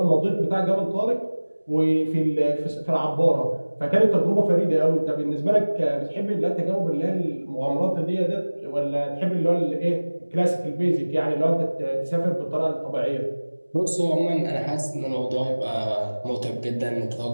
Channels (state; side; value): inverted; both; correlation -1.00